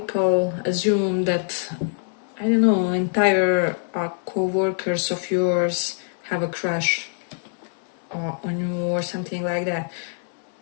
assume that, I don't know, entire co-workers of yours have a crush on you or something like that.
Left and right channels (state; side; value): silent; right; 61 dB below the other